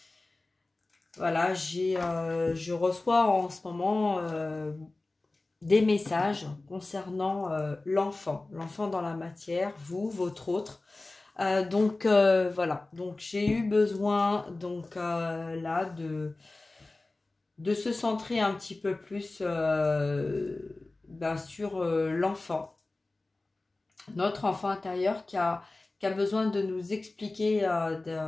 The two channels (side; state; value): right; quieter; 3.1 dB